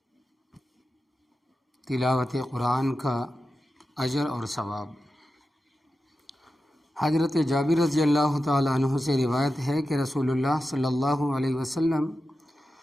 تلاوت قرآن کا اجر اور ثواب۔ حضرت جابر رضی اللہ تعالیٰ عنہ سے روایت ہے کہ رسول اللہ صلی اللہ علیہ وسلم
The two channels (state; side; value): normal; both; correlation 0.92